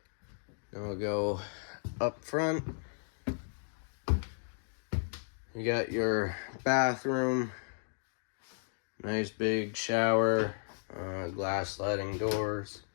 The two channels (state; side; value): silent; right; digital silence